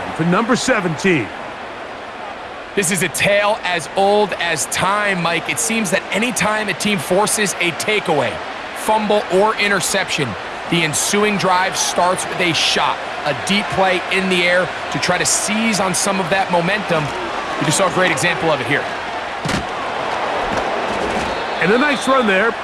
for number 17. This is a tale as old as time, Mike. It seems that anytime a team forces a takeaway, fumble, or interception, the ensuing drive starts with a shot, a deep play in the air to try to seize on some of that momentum. You just saw a great example of it here. And a nice run there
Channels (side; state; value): both; identical; correlation 1.00